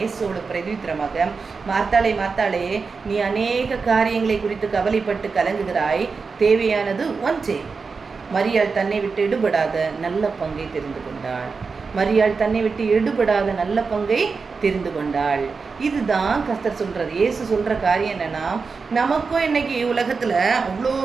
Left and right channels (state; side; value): quieter; left; 4.8 dB